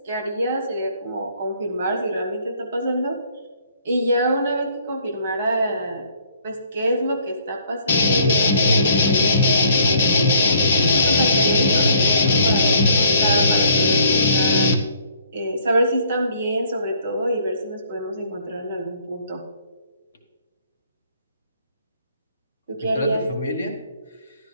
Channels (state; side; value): inverted; both; correlation -0.62